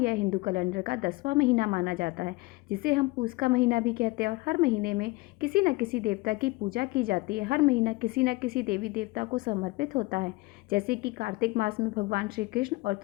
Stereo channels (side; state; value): right; quieter; 22.4 dB